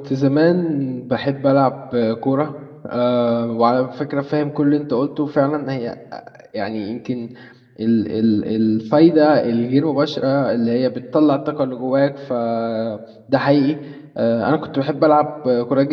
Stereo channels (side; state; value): both; identical; correlation 1.00